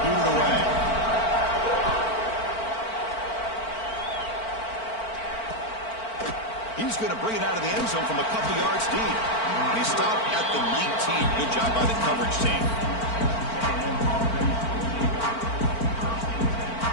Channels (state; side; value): late; right; 4.5 ms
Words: boot it away. He's going to bring it out of the end zone from a couple yards deep. And he stopped at the 19. Good job by the coverage team.